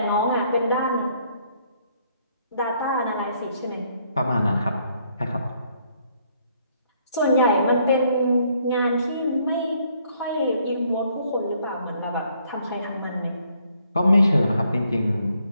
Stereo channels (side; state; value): both; inverted; correlation -0.68